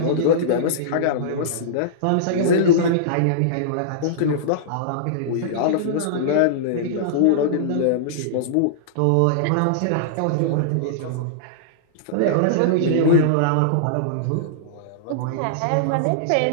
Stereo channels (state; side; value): different; both; correlation -0.02